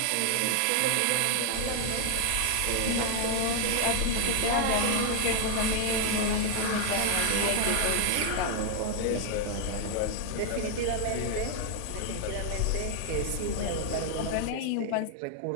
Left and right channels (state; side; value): different; both; correlation 0.00